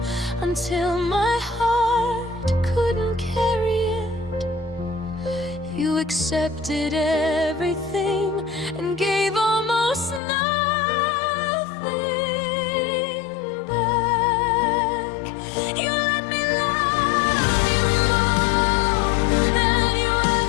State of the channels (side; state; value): right; drops out; at 10.2 s